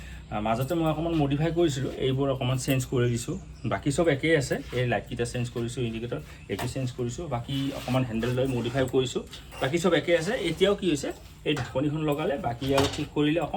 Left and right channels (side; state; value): both; identical; correlation 1.00